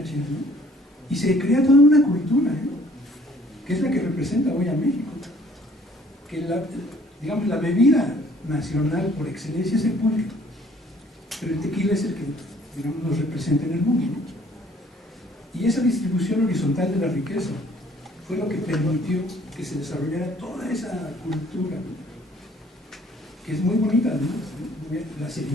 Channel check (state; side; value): normal; both; correlation 0.58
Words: ¿no? Y se crea toda una cultura, ¿no? Que es la que representa hoy a México. Que digamos, la bebida nacional por excelencia es el pulque, pero el tequila es el que, digamos, nos representa en el mundo, ¿no? Y esa distribución horizontal de la riqueza fue lo que permitió que se desarrollara toda esa cultura, ¿no? Que es muy bonita, además, ¿no? Las